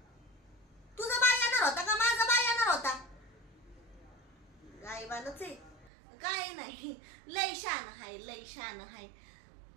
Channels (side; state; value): left; drops out; at 5.9 s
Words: तुझा बाय येणार होता का माझा बाय येणार होता? गायबानच आहे, काय नाही. लय शान हाय, लय शान हाय.